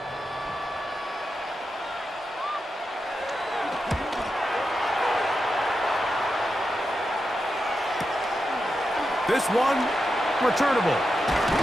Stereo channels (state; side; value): normal; both; correlation 0.88